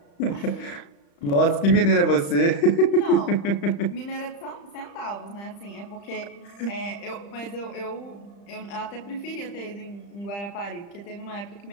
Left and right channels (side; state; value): right; late; 35 ms